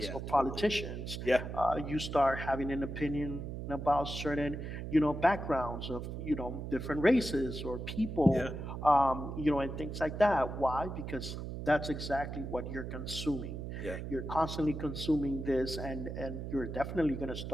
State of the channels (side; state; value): right; noise; hum, 6 dB below the sound